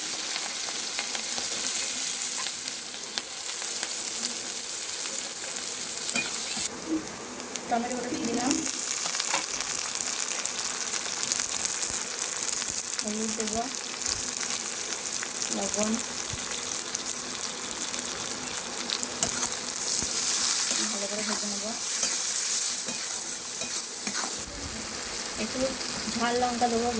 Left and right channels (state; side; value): identical; both; correlation 1.00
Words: টমেটো গুঁড়ো দিয়ে দিলাম, হলুদ দেবো, লবণ, ভালো করে ভেজে নেবো। একটু ঝাল লঙ্কা দেবো